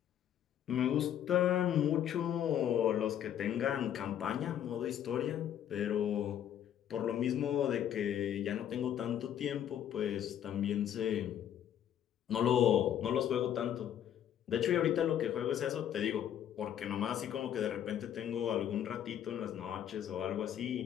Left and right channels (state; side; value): quieter; right; 10.2 dB